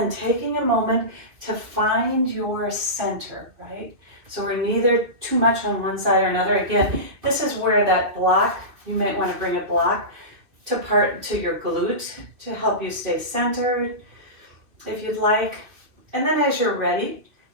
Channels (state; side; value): late; left; 2.6 ms